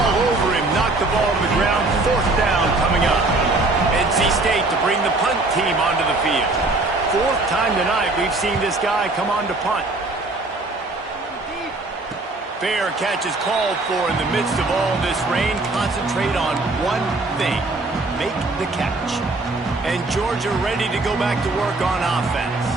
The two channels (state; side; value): quieter; left; 3.1 dB